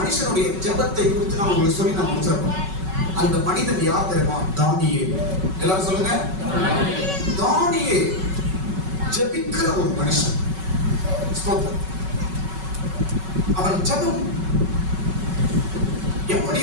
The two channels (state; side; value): late; left; 5.3 ms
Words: ஜெபத்தை குறித்து நான் உங்களுக்கு சொல்லி நான் முடிச்சிருக்கோம். அந்த மனிதன் யார் தெரியுமா? தானியேல். எல்லாரும் சொல்லுங்க. தானியேல் ஜெபிக்கிற ஒரு மனுஷன். அவன் ஜெபம் எப்படி